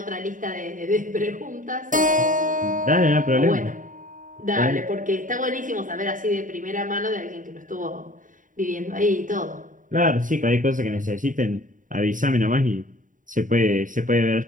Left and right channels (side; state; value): left; late; 0.38 ms